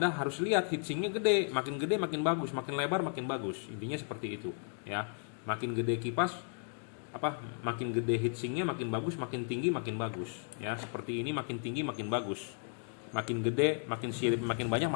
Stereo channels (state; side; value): silent; right; 55 dB below the other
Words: harus lihat heatsinknya gede makin bagus, makin lebar makin bagus. Intinya seperti itu ya. Makin gede kipas makin gede heatsinknya makin bagus, makin tinggi makin bagus ya. Seperti ini makin tinggi makin bagus, makin gede makin sirip makin banyak